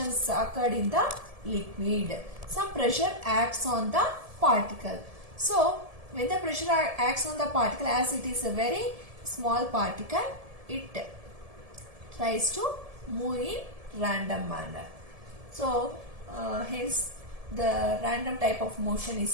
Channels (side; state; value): left; late; 1.7 ms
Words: occurred in the liquid, some pressure acts on the particle. So, when the pressure acts on the particle, as it is a very small particle, it tries to move in random manner. So, hence the random type of motion